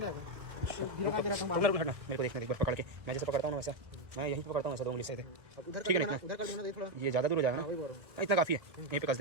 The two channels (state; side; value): late; left; 1.4 ms